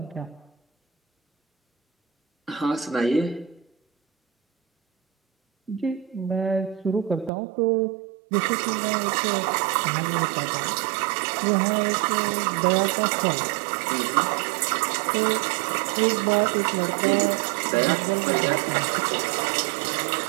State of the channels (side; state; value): left; drops out; at 7.3 s